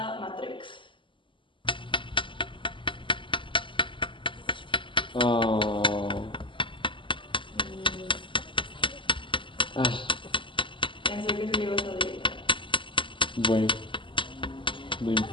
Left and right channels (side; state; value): right; late; 0.24 ms